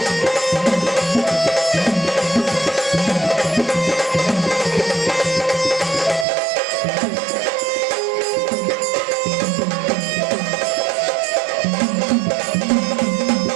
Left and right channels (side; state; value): left; drops out; at 6.2 s